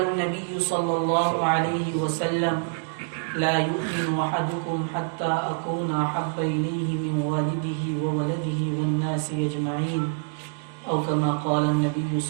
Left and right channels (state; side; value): silent; left; digital silence